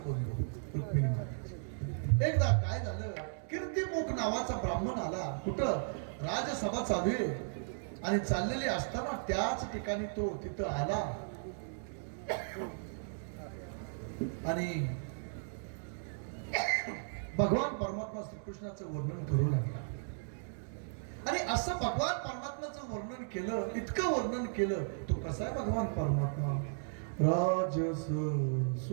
बंधू रुक्मिणी म्हणतात. एकदा काय झालं, कीर्तिमुख नावाचा ब्राह्मण आला. कुठं? राजसभा चालू आहे आणि चाललेली असताना त्याच ठिकाणी तो तिथं आला आणि भगवान परमात्मा श्रीकृष्णाचं वर्णन करू लागला. आणि असं भगवान परमात्म्याचं वर्णन केलं, इतकं वर्णन केलं. तो कसा आहे भगवान परमात्मा? राजस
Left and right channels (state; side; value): silent; left; digital silence